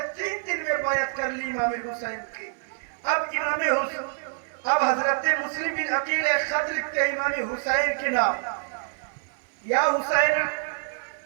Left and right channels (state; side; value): silent; left; 60 dB below the other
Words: 3 دن میں بیعت کر لی امام حسین کی. اب حضرت مسلم بن عقیل ایک خط لکھتے ہیں امام حسین کے نام, یا حسین